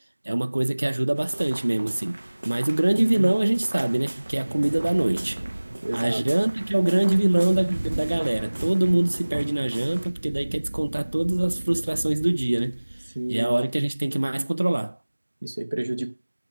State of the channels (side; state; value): both; inverted; correlation -1.00